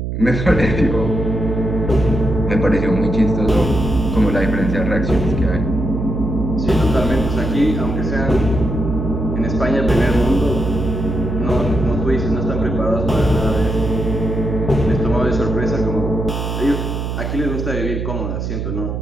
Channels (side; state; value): right; noise; hum, 3 dB below the sound